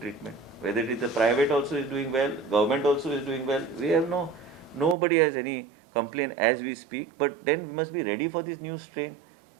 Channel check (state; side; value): drops out; left; at 5.0 s